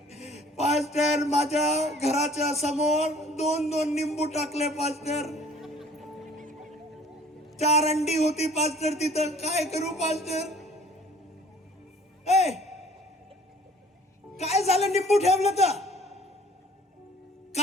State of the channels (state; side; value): normal; both; correlation 0.52